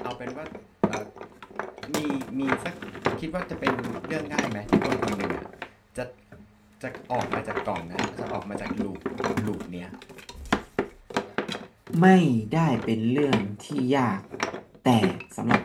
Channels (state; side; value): identical; both; correlation 1.00